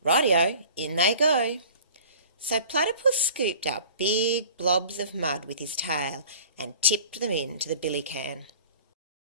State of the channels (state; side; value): inverted; both; correlation -0.45